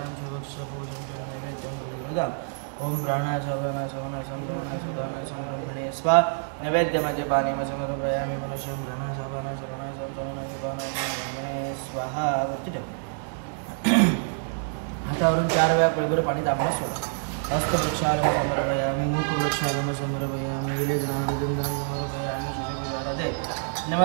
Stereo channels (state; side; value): silent; left; digital silence